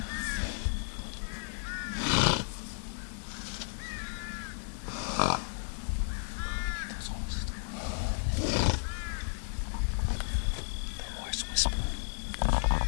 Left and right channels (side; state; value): right; silent; digital silence